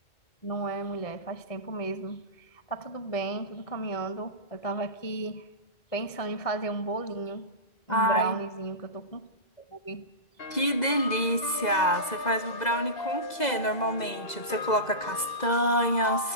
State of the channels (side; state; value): right; late; 2.0 ms